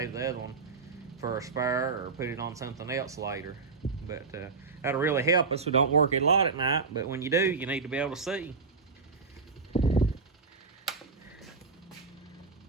the other one for a spare or put it on something else later. But that'll really help us. We don't work it a lot at night, but when you do, you need to be able to see.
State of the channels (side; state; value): left; quieter; 4.6 dB